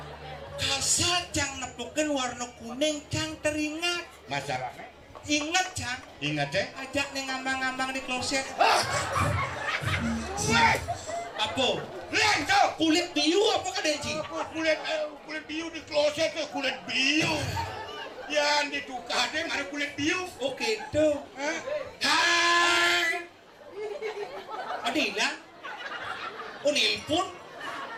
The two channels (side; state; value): both; identical; correlation 1.00